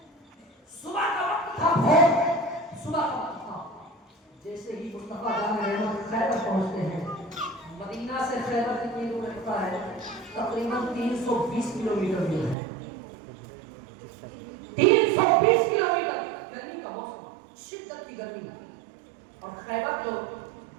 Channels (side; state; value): left; drops out; at 12.6 s